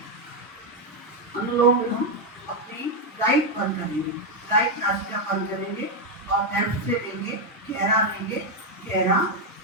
अनुलोम विलोम अपनी राइट बंद करेंगे, राइट नासिका बंद करेंगे और लेफ्ट से लेंगे, गहरा लेंगे, गहरा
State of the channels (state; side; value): normal; both; correlation 0.03